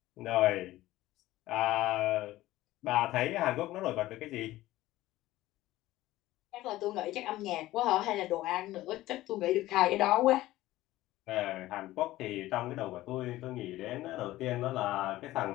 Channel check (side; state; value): right; quieter; 16.3 dB